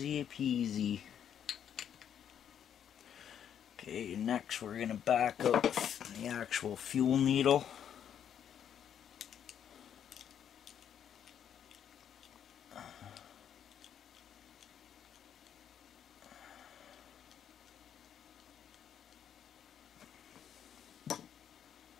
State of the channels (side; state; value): right; quieter; 9.1 dB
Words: peasy. Okay, next we're going to back up the actual fuel needle.